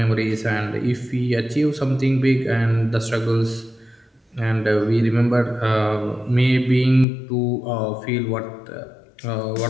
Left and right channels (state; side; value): drops out; right; at 7.1 s